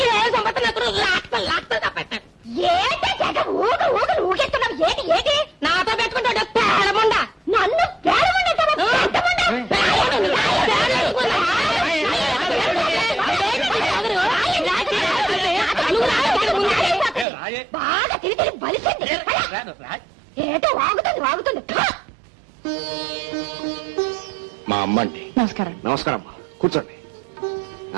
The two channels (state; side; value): drops out; left; at 17.2 s